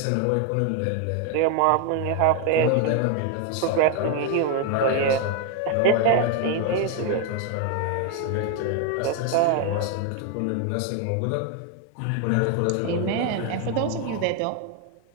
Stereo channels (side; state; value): both; different; correlation 0.01